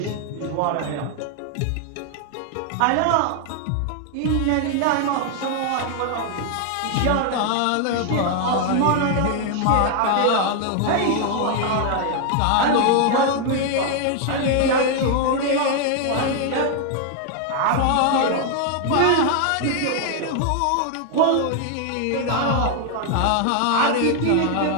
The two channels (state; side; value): different; both; correlation 0.00